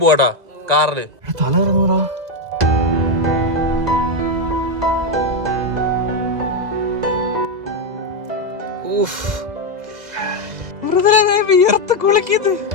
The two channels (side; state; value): left; late; 2.0 ms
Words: കാറില്. തല ഇറങ്ങൂടാ.